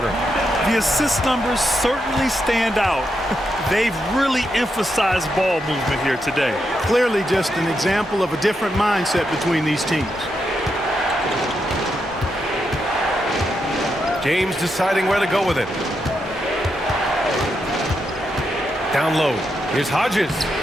The assist numbers certainly stand out. They've really emphasized ball movement here today. Clearly just an example of a different mindset between these teams. James deciding where to go with it. Down low. Here's Hodges.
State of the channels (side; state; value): both; normal; correlation 0.83